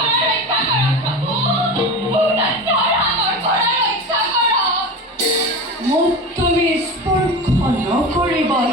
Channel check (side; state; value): both; normal; correlation 0.28